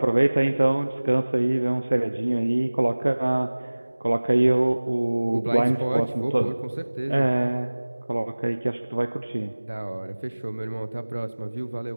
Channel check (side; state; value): both; inverted; correlation -1.00